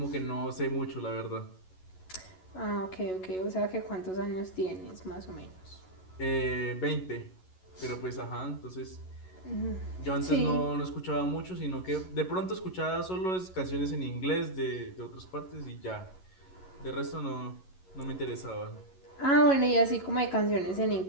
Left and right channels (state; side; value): late; right; 11 ms